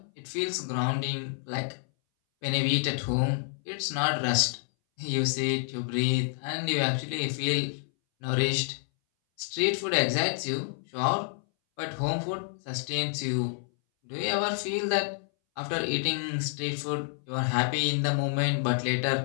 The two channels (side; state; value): right; silent; 59 dB below the other